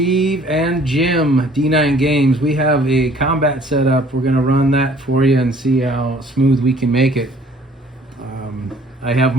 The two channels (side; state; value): both; normal; correlation 0.56